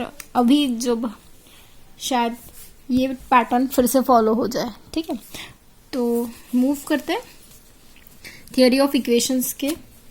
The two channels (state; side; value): identical; both; correlation 1.00